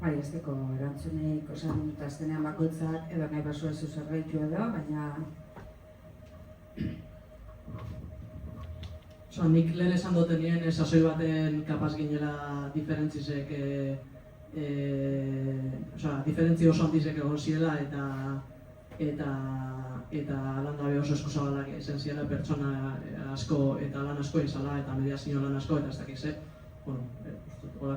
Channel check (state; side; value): identical; both; correlation 1.00